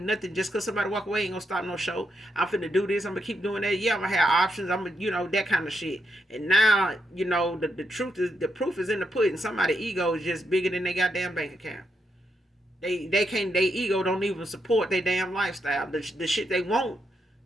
nothing. Just cause somebody walk away ain't gonna stop no show. I'm finna do this. I'm gonna keep doing that. Yeah, I'm gonna have options. I'm gonna, you know, that kind of shit. And now, you know, the truth is, the proof is in the pudding. Somebody's ego is just bigger than their goddamn bank account. They can't, their ego don't even support their damn lifestyle. The shit they want,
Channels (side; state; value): both; normal; correlation 0.81